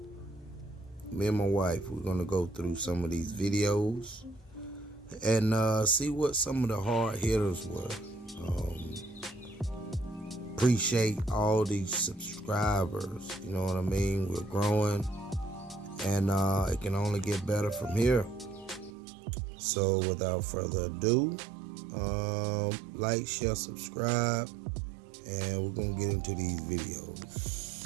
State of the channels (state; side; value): drops out; left; at 18.9 s